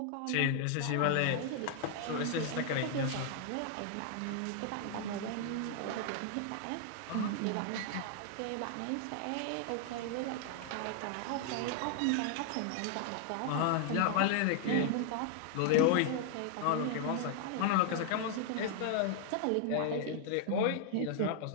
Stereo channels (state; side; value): different; both; correlation 0.00